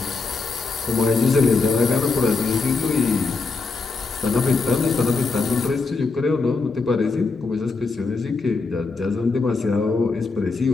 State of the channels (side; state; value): right; quieter; 4.1 dB